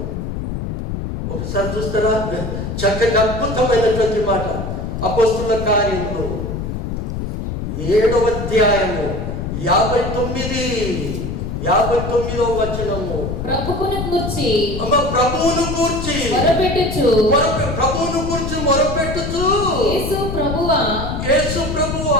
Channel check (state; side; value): noise; left; rumble, 4 dB below the sound